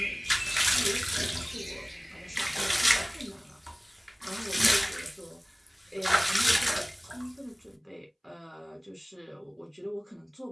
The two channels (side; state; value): both; identical; correlation 1.00